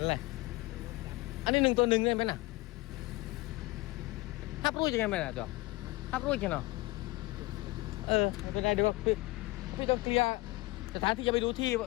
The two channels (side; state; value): right; quieter; 21.1 dB